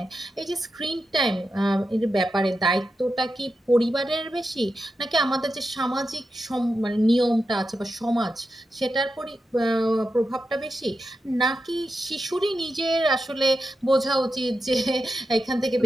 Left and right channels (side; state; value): both; normal; correlation 0.89